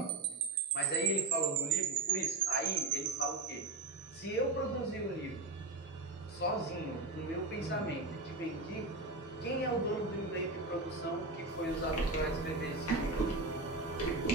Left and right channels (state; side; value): quieter; left; 3.3 dB